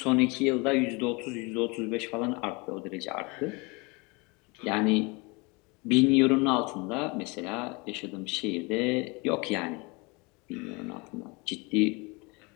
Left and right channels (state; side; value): quieter; right; 27.7 dB